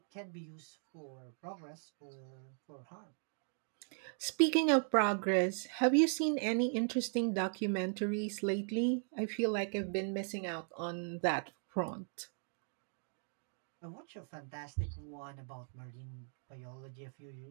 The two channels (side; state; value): left; silent; 52 dB below the other